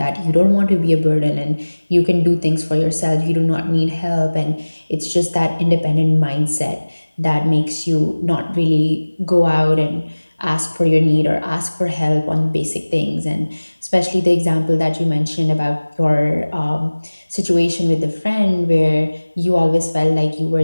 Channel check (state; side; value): inverted; both; correlation -1.00